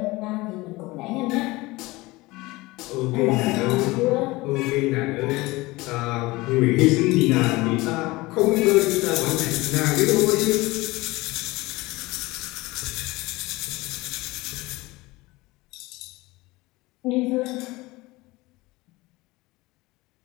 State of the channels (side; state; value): right; quieter; 21.3 dB